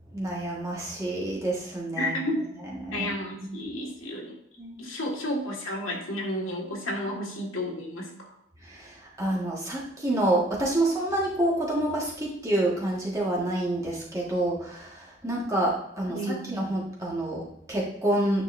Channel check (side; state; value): both; normal; correlation 0.57